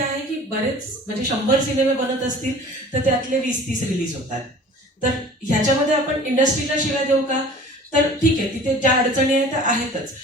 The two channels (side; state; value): both; normal; correlation 0.45